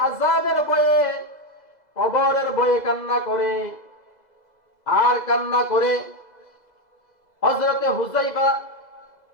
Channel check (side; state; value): right; late; 2.0 ms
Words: আযাবের ভয়ে, কবরের ভয়ে কান্না করে। আর কান্না করে হযরতে হুযায়ফা